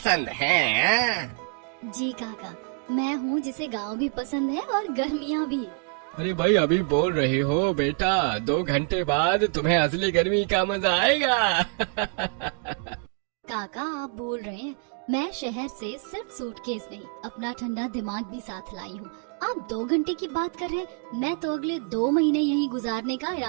हैं। जी काका, मैं हूँ जिसे गांव भी पसंद है और गर्मियाँ भी। अरे भाई, अभी बोल रही हो बेटा, 2 घंटे बाद तुम्हें असली गर्मी का मजा आएगा। काका आप भूल रहे हैं, मैं शहर से सिर्फ सूटकेस नहीं, अपना ठंडा दिमाग भी साथ लाई हूँ। आप 2 घंटे की बात कर रहे हैं, मैं तो अगले 2 महीने यहीं गुजारने का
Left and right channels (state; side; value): quieter; left; 39.9 dB